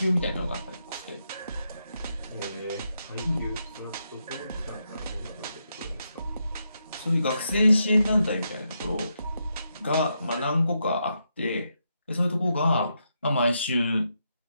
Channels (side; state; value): both; inverted; correlation -0.82